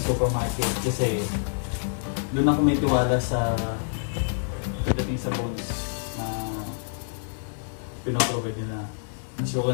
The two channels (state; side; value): silent; right; digital silence